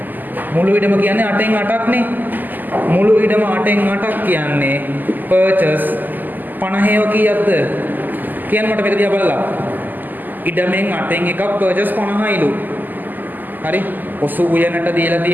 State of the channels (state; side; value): late; left; 0.086 ms